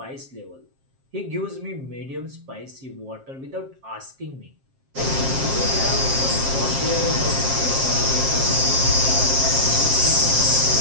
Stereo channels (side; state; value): left; late; 7.5 ms